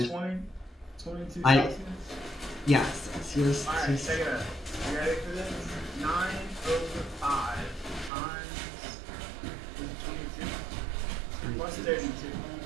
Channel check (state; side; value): drops out; left; at 8.1 s